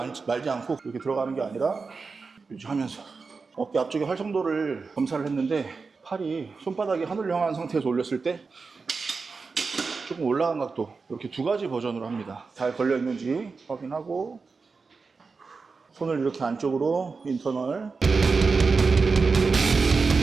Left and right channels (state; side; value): quieter; left; 4.6 dB